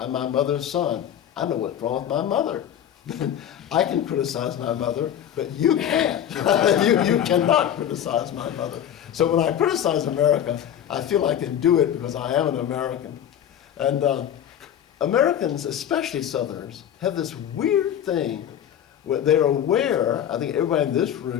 my mother's son, I know what's wrong with my mother. I can criticize my mother, but you can't. you cannot criticize my mother. So when I criticize America, I feel I can do it because I am an American. And Americans, especially Southerners, have this weird thing where they're aware, I think everybody in this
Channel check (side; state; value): right; quieter; 10.0 dB